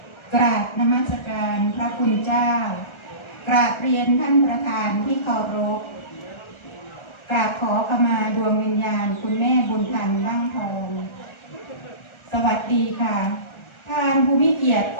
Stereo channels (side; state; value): right; late; 1.3 ms